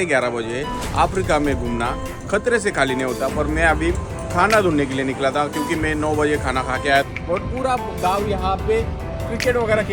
बजे। अफ्रीका में घूमना खतरे से खाली नहीं होता, पर मैं अभी खाना ढूंढने के लिए निकला था क्योंकि मैं 9 बजे खाना खा के आया। और पूरा गाँव यहाँ पे क्रिकेट वगैरह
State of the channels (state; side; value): identical; both; correlation 1.00